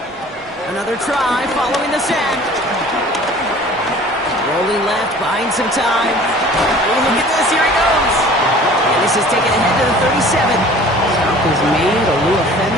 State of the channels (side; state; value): both; normal; correlation 0.47